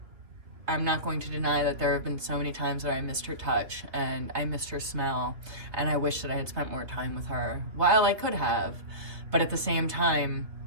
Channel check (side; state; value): left; late; 3.0 ms